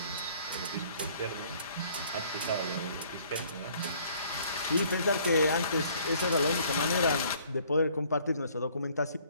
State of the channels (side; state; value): both; inverted; correlation -0.58